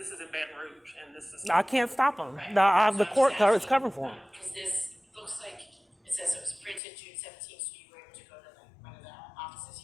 is in Baton Rouge, and this is. I can't stop them. Right. The court is covering for them. Because this looks like, it says it was printed June 17th, so you were able to go to one of the offices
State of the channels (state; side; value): drops out; right; at 6.8 s